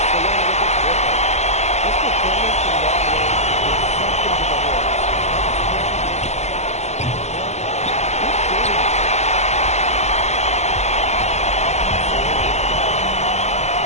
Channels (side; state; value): right; late; 0.32 ms